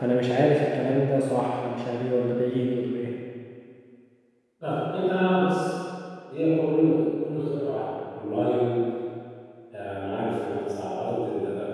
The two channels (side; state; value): both; identical; correlation 1.00